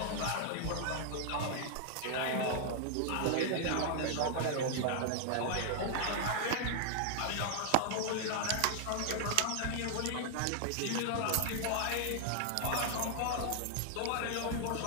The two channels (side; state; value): both; different; correlation 0.00